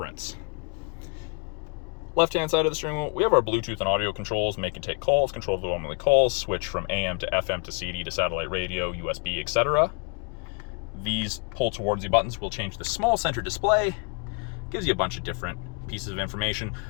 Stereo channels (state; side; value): quieter; right; 33.4 dB